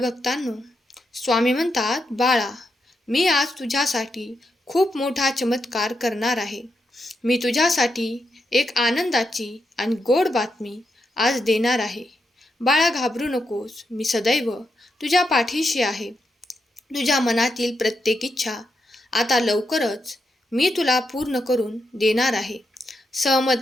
स्वामी म्हणतात, बाळा, मी आज तुझ्यासाठी खूप मोठा चमत्कार करणार आहे. मी तुझ्यासाठी एक आनंदाची आणि गोड बातमी आज देणार आहे. बाळा, घाबरू नकोस, मी सदैव तुझ्या पाठीशी आहे. तुझ्या मनातील प्रत्येक इच्छा आता लवकरच मी तुला पूर्ण करून देणार आहे.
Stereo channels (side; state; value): both; normal; correlation 0.83